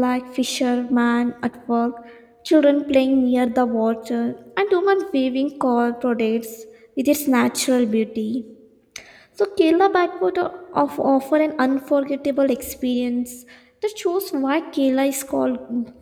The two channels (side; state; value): both; identical; correlation 1.00